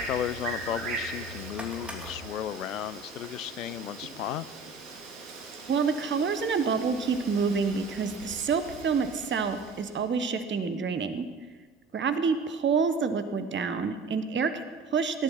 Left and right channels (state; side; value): quieter; left; 3.5 dB